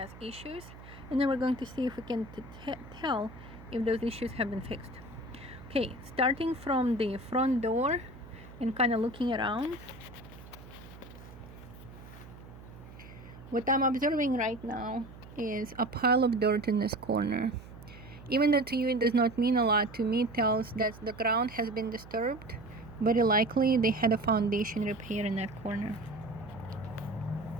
issues, and then we're going to see if we can tell if those issues have been fixed. Okay, starting from the front door and kind of looking around, what I'm observing right now is a pile of dirt in this corner. Even though to you it does not mean a lot, to me it tells that the ground has been disturbed. Very likely they had a foundation repair in that corner.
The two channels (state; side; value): noise; right; hum, 17 dB below the sound